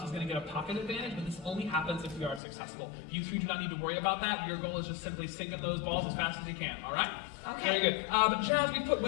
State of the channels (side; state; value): right; drops out; at 2.4 s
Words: is going to get a pocket advantage, but this only happens if we are successful. You two do not need to worry about that. Your goal is just simply sink in those balls as fast as you can, all right? Okay. Very good. But Jazz, we put